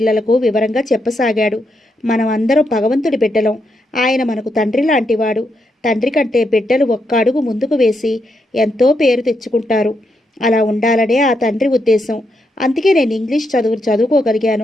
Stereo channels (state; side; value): normal; both; correlation 0.81